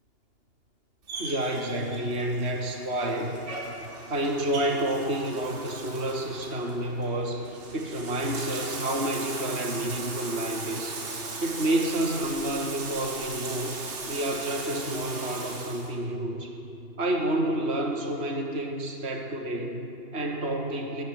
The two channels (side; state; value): left; late; 2.8 ms